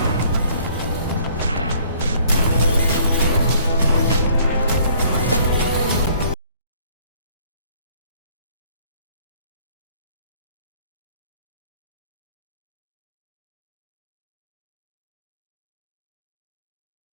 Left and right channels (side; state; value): both; inverted; correlation -0.58